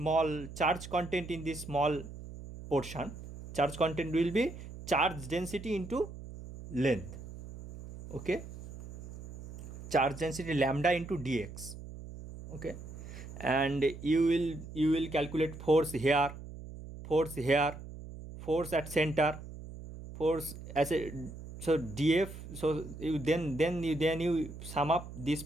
charge content in this small portion. Charge content will be charge density into length. Okay, charge density lambda into dx. Okay, and you will calculate force here, force at center, force as a, so df. So you then you sum up this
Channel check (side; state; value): right; noise; hum, 13 dB below the sound